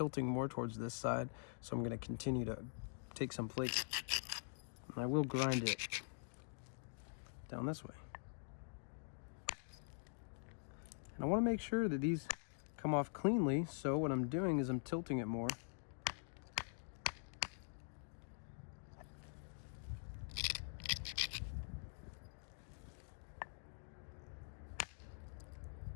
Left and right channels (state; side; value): silent; right; digital silence